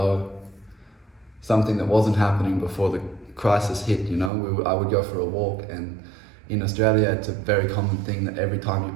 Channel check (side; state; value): left; drops out; at 4.3 s